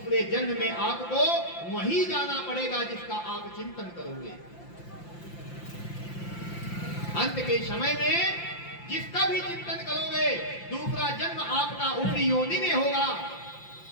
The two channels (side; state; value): right; late; 5.8 ms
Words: जन्म में आपको वहीं जाना पड़ेगा जिसका आप चिंतन करोगे। अंत के समय में जिसका भी चिंतन करोगे दूसरा जन्म आपका उसी योनि में होगा।